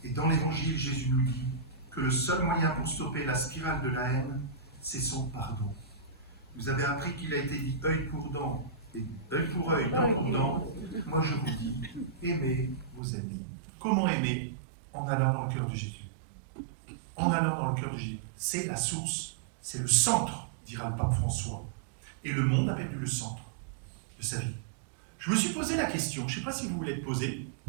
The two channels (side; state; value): left; drops out; at 13.0 s